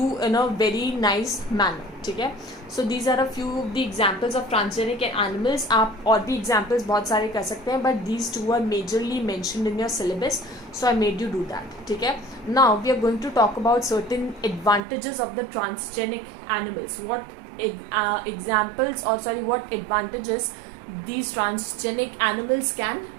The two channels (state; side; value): drops out; left; at 14.8 s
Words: in a very nice manner. ठीक है, so these are a few of the examples of transgenic animals. आप और भी examples बहुत सारे कर सकते हैं, but these two are majorly mentioned in your syllabus, so I made you do that. ठीक है, now we are going to talk about certain advantages of the transgenic animals. What examples, or sorry, what advantages these transgenic animals can